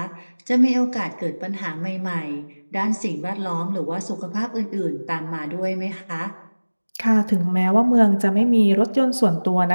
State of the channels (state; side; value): inverted; both; correlation -1.00